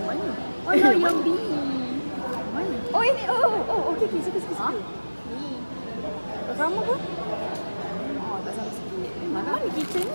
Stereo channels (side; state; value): both; inverted; correlation -1.00